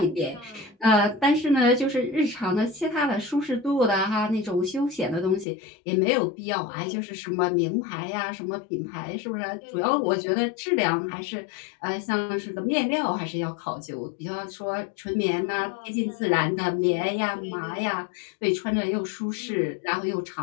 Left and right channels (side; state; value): right; drops out; at 5.5 s